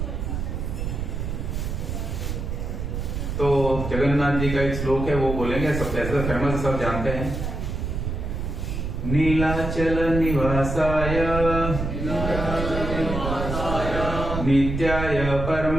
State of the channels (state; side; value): noise; right; rumble, 3 dB below the sound